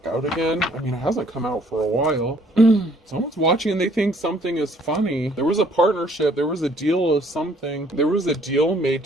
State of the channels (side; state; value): both; normal; correlation 0.61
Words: out again. I mean, it hasn't come out for a while. Someone's watching and they think something is funny. There was a partnership. There was a deal of something. There was a deal made